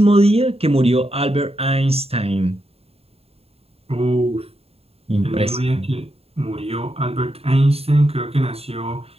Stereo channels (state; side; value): late; left; 0.29 ms